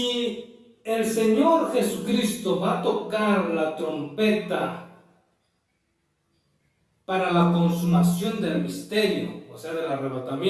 el Señor Jesucristo va a tocar la trompeta para la consumación del misterio, o sea, del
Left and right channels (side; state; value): both; identical; correlation 1.00